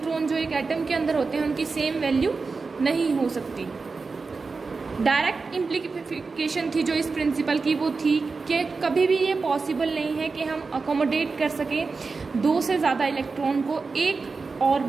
जो एक एटम के अंदर होते हैं उनकी सेम वैल्यू नहीं हो सकती। डायरेक्ट इम्प्लीकेशन थी जो इस प्रिंसिपल की वो थी कि कभी भी ये पॉसिबल नहीं है कि हम अकोमोडेट कर सकें दो से ज़्यादा इलेक्ट्रॉन को एक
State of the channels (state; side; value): quieter; left; 4.3 dB